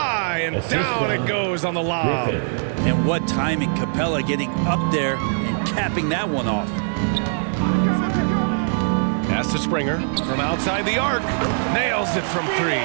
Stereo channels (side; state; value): left; silent; digital silence